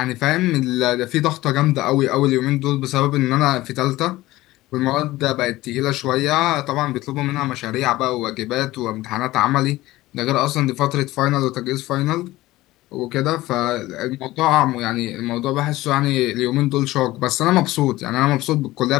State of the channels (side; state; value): right; quieter; 17.6 dB